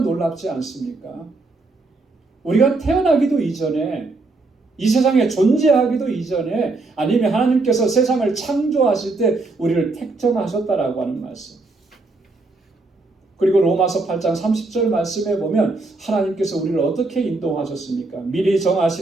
않습니까? 우리가 태어나기도 이전에, 이 세상에 존재하기도 이전에, 아니면 하나님께서 세상을 창조하실 때 우리를 택정하셨다라고 하는 말씀. 그리고 로마서 8장 30절 말씀에 보면 하나님께서 우리를 어떻게 인도하셨습니까? 미리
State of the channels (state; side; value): quieter; left; 3.4 dB